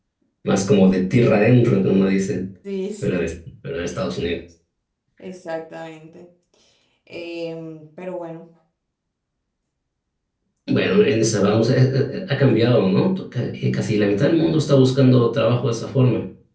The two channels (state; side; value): identical; both; correlation 1.00